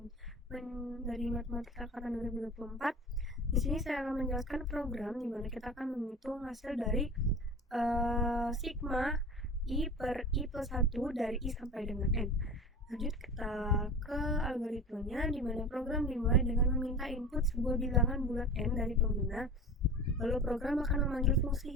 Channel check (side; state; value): both; normal; correlation 0.35